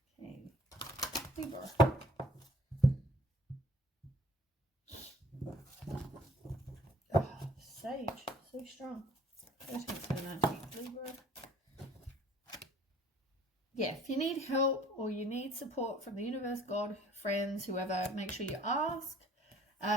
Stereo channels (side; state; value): both; normal; correlation 0.55